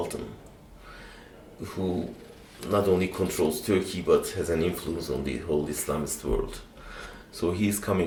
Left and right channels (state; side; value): identical; both; correlation 1.00